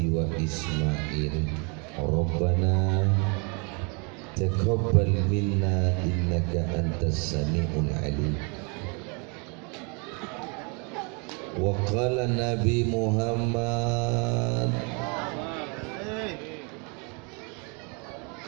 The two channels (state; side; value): quieter; left; 33.9 dB